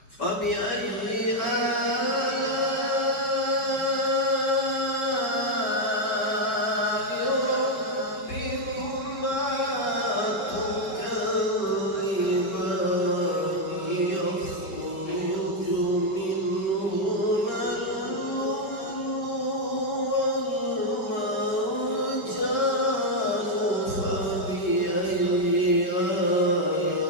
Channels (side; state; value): right; late; 4.8 ms